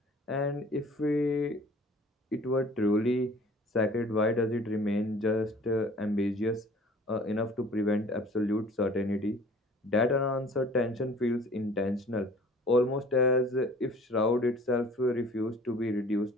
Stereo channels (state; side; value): normal; both; correlation 0.49